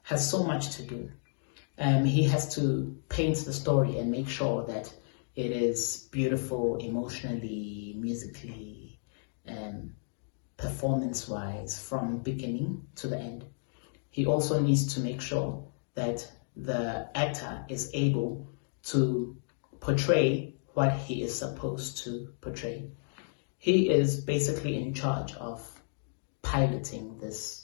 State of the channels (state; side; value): silent; right; digital silence